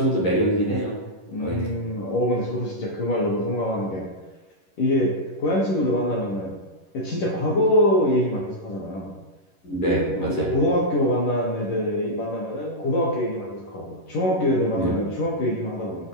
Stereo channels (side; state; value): right; late; 11 ms